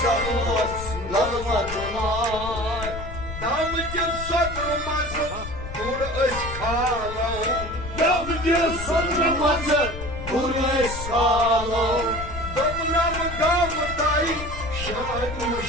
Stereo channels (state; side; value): noise; left; rumble, 9 dB below the sound